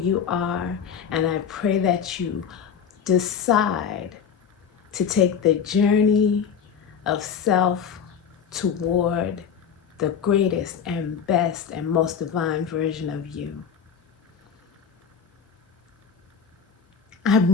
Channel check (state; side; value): quieter; right; 7.2 dB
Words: are, and I pray that you decide to take the journey of self toward the greatest and best and most divine version of you.